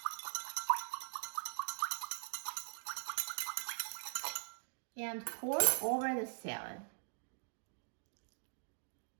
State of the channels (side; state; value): left; silent; digital silence